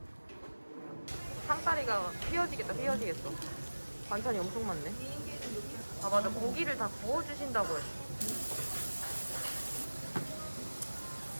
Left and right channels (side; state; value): both; inverted; correlation -1.00